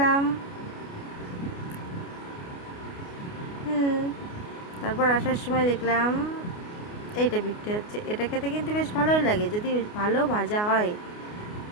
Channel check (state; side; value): late; right; 29 ms